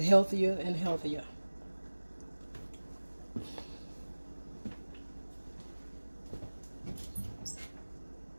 healthier and healthier.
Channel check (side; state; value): both; inverted; correlation -1.00